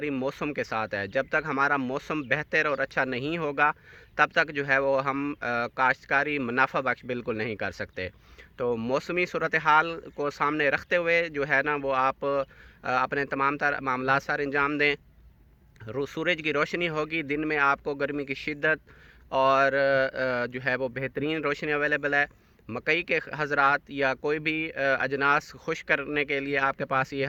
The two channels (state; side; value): identical; both; correlation 1.00